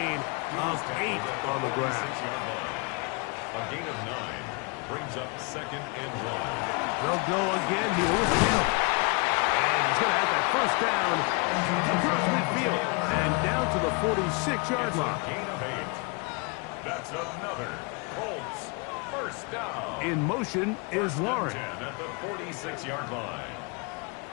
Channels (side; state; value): right; quieter; 31.6 dB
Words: of 8 on the ground. A gain of 9 brings up 2nd and 1. They'll go again here with Taylor. And he's going to have that first down across midfield and down to the 46-yard line. Gain of 8. That's another Colts first down. In motion is Warren. 10 at the 46-yard line.